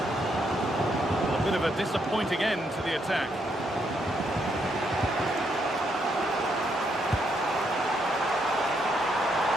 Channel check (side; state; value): both; normal; correlation 0.76